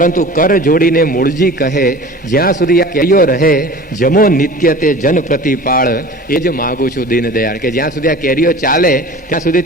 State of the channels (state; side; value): normal; both; correlation 0.40